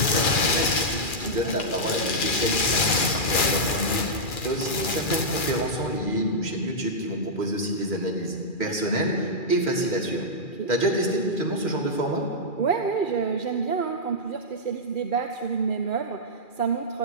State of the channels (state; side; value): late; right; 2.4 ms